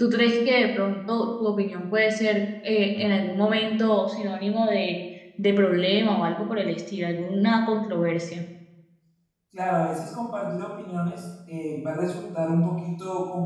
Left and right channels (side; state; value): both; identical; correlation 1.00